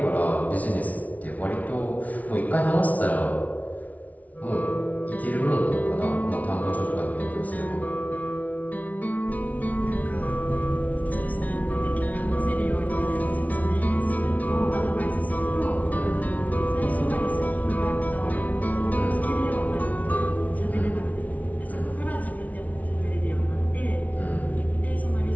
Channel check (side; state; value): right; late; 0.071 ms